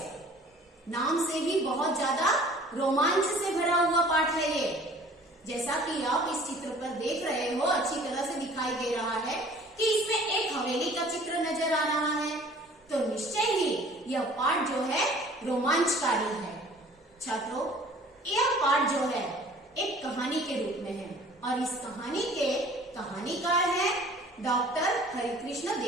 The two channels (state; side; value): normal; both; correlation 0.50